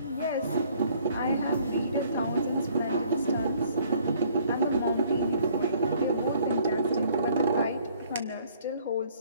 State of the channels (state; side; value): inverted; both; correlation -0.60